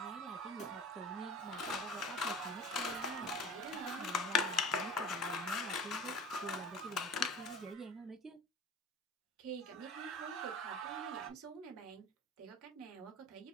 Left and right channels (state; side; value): normal; both; correlation 0.39